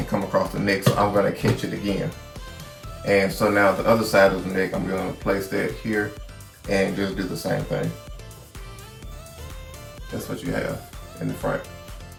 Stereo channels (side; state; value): both; identical; correlation 1.00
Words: come across the neck, so I'm gonna catch it again. And so now the other side of the neck, I'm gonna place that here and just do the same thing. That's what you have in the front.